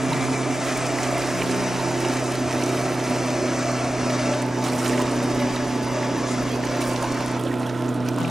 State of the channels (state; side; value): normal; both; correlation 0.93